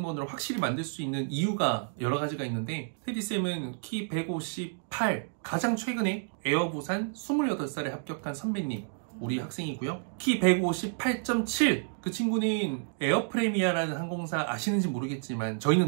확실히 만들 수 있는 이유가 여러 가지가 있는데, 테디쌤은 키 158, 가장 최근에 에어부산 28살에 합격한 선배님, 우리 학생이고요. 키 158.7. 그 친구는 에어프레미아라는 항공사 아시는지 모르겠지만 저희는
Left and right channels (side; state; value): left; silent; digital silence